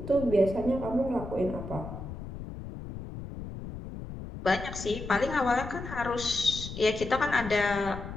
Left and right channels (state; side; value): noise; left; rumble, 10 dB below the sound